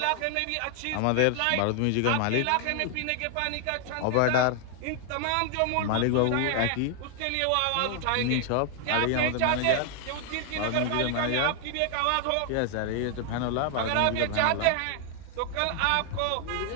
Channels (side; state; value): both; different; correlation 0.00